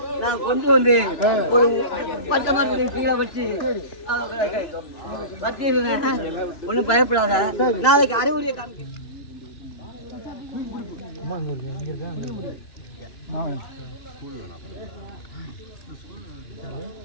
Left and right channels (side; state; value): right; late; 2.9 ms